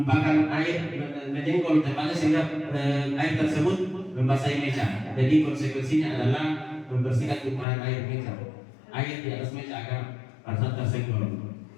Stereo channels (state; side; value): drops out; right; at 7.7 s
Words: air, menyenggol tempatnya sehingga air tersebut membasahi meja. Jadi konsekuensinya adalah membersihkan tumpahan air meja, air di atas meja agar pada saat tersenggol.